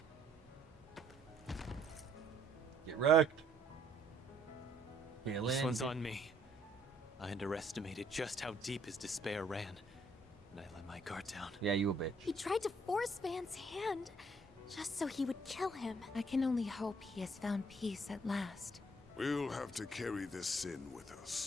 Get wrecked. This one's on me. I underestimated just how deep his despair ran, and I let my guard down. Yeah, you a bitch. He tried to force Van's hand, just so he would kill him. I can only hope he has found peace at last. We'll have to carry this sin with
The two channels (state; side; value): normal; both; correlation 0.65